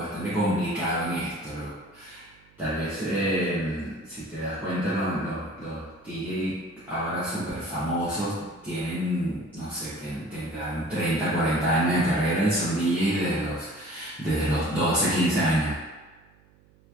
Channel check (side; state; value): right; noise; hum, 30 dB below the sound